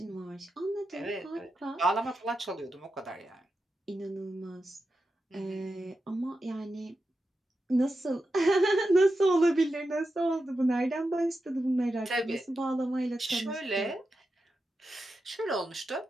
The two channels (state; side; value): normal; both; correlation 0.89